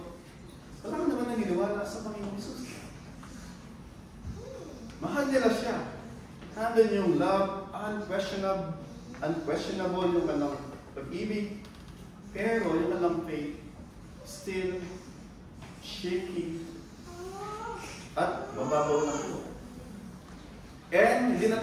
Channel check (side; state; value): both; identical; correlation 1.00